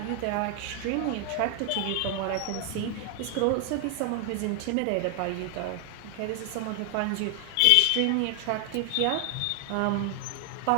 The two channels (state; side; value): different; both; correlation 0.00